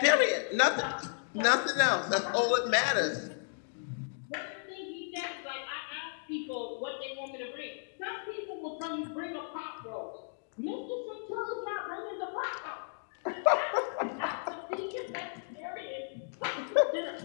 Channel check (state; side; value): silent; right; digital silence